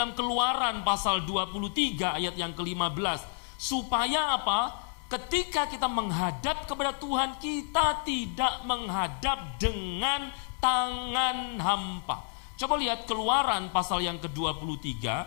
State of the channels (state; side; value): silent; right; 58 dB below the other